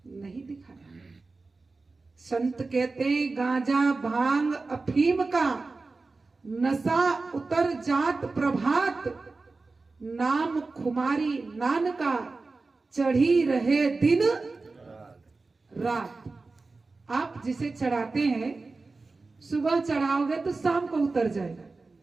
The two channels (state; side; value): quieter; left; 3.8 dB